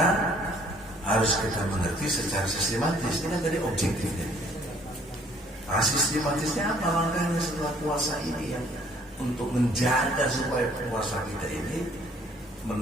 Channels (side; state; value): both; normal; correlation 0.60